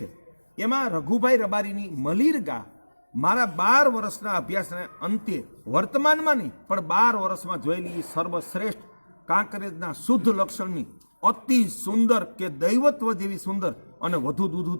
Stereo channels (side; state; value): both; inverted; correlation -1.00